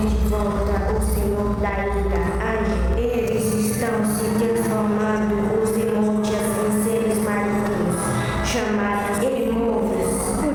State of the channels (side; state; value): both; identical; correlation 1.00